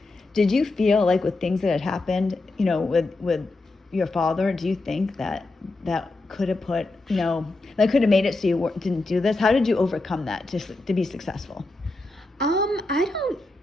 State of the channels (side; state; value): right; quieter; 3.0 dB